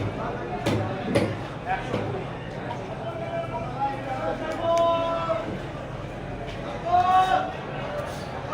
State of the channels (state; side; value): identical; both; correlation 1.00